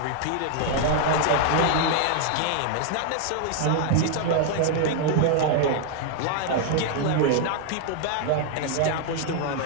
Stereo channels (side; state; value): both; different; correlation 0.00